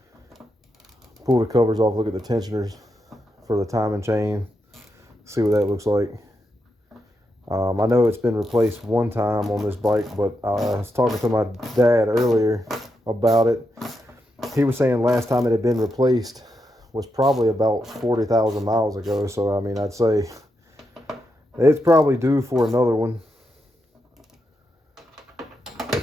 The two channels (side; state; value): both; normal; correlation 0.84